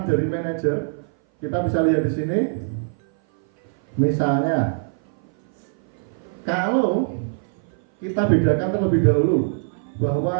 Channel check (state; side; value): silent; left; 58 dB below the other